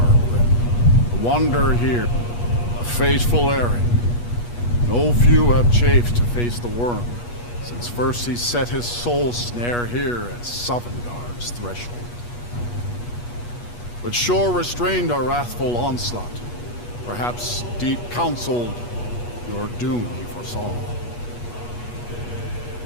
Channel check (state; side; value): late; right; 8.3 ms